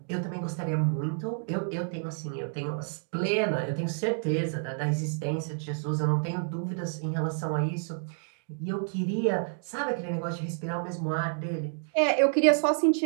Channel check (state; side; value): silent; left; digital silence